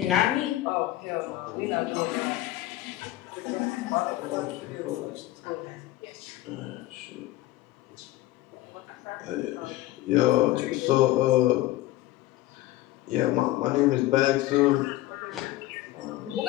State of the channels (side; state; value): right; quieter; 16.2 dB